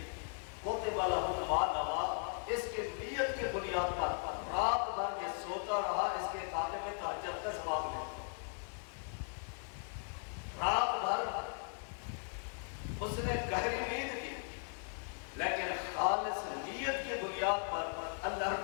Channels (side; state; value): right; silent; 52 dB below the other